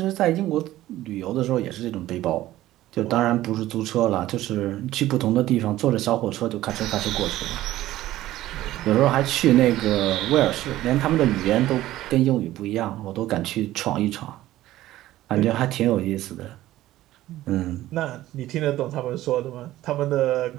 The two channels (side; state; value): left; quieter; 15.1 dB